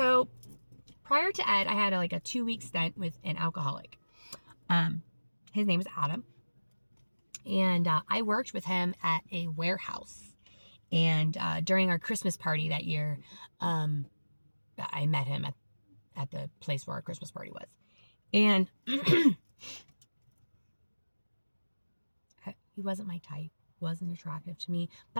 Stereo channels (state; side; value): inverted; both; correlation -1.00